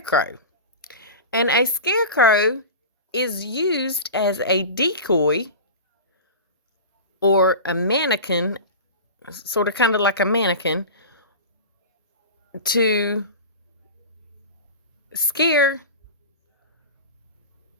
And a scarecrow is used as a decoy or a mannequin, sort of kind of like a mannequin, to scare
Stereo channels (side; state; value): both; inverted; correlation -0.30